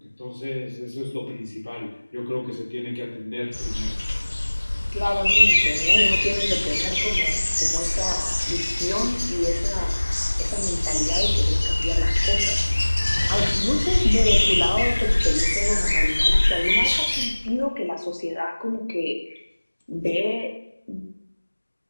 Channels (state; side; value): inverted; both; correlation -1.00